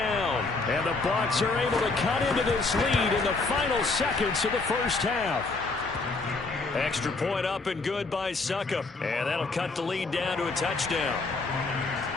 And the Bucs are able to cut into this lead in the final seconds of the first half. Extra point up and good by Succop. And that'll cut the lead down to a touchdown.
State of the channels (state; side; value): quieter; right; 3.7 dB